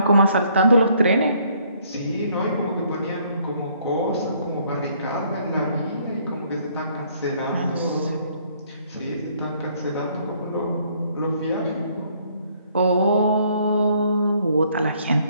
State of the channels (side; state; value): both; inverted; correlation -0.65